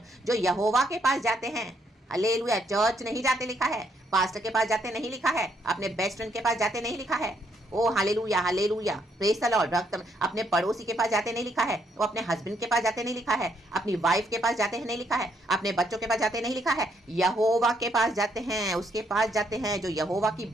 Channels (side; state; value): both; normal; correlation 0.72